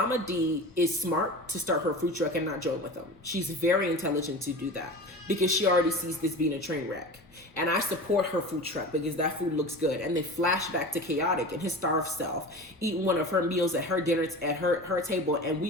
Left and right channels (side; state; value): both; normal; correlation 0.33